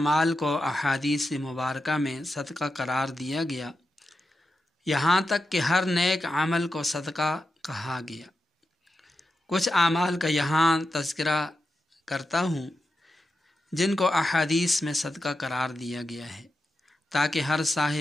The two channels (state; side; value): normal; both; correlation 0.88